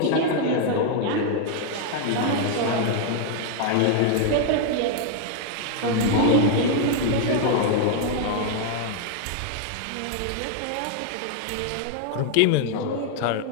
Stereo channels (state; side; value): different; both; correlation 0.00